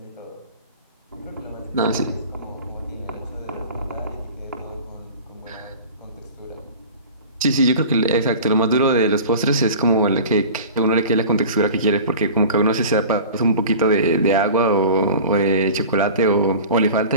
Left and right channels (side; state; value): both; inverted; correlation -0.38